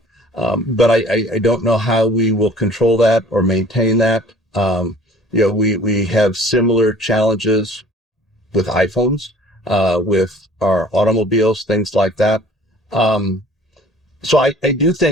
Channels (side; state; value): both; normal; correlation 0.50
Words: but I don't know how we will control that or maintain that. We have similar challenges with iPhones, with our automobiles, things like that. So I do